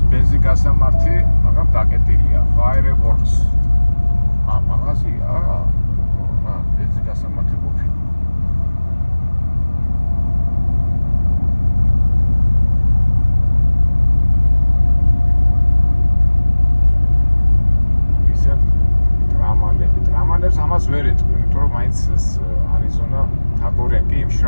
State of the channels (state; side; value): inverted; both; correlation -1.00